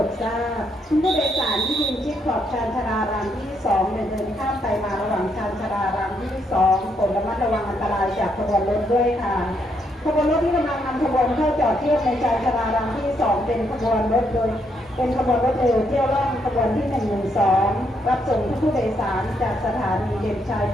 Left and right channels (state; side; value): normal; both; correlation 0.75